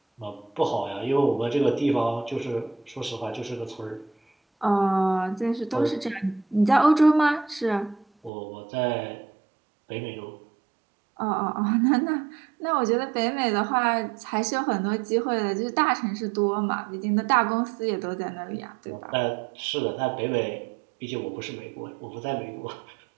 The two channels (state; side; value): drops out; left; at 8.3 s